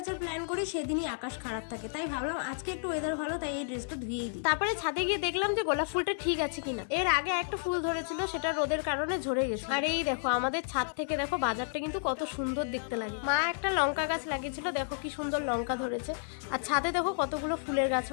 প্ল্যান করি সেদিনই আকাশ খারাপ থাকে, তাই ভাবলাম আজকে একটু ওয়েদার ভালো, তাই এই ড্রেসটা ধুয়েই দিই। তারপরে ছাদে গিয়ে দেখলাম যে গোলাপ ফুলটা ঠিক আছে কিনা। এর আগে একটা ফুল ধরেছিল, সেটা রোদের কারণে ঝরে গেছে। আর এই দেখো আমাদের ছাদ থেকে দেখো বাজারটা কিন্তু কত সুন্দর দেখতে লাগে। মা একটা লঙ্কা গাছ লাগিয়েছিল, দেখো কি সুন্দর লঙ্কা ধরেছে। আর ছাদে দেখো কতগুলো ফুলের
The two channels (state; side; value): silent; right; digital silence